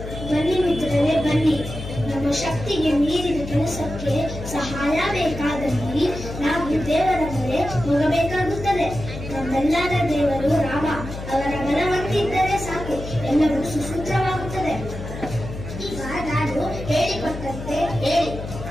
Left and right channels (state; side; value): noise; left; hum, 9 dB below the sound